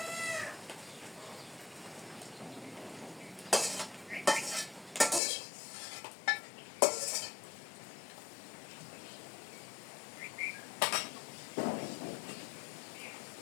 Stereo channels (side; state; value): right; drops out; at 5.2 s